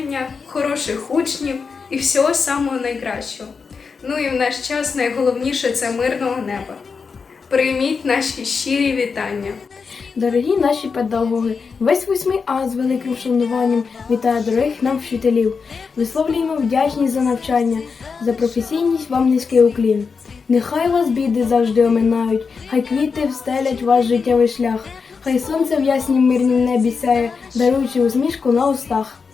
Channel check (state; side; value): quieter; right; 5.3 dB